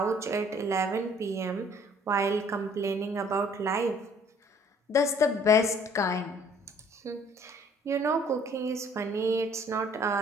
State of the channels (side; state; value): both; normal; correlation 0.57